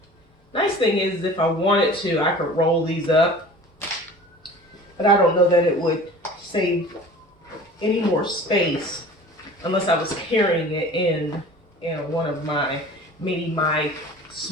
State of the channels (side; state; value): both; normal; correlation 0.42